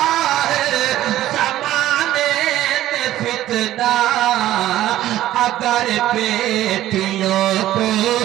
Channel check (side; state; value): left; quieter; 13.9 dB